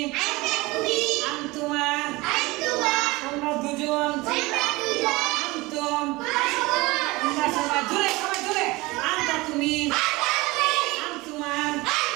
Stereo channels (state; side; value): quieter; left; 22.1 dB